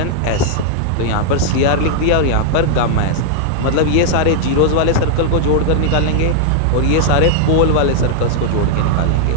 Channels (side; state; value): both; different; correlation -0.01